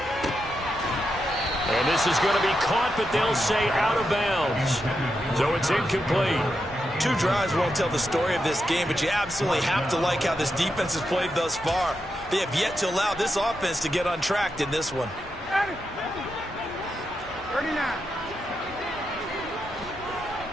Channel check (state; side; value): normal; both; correlation 0.86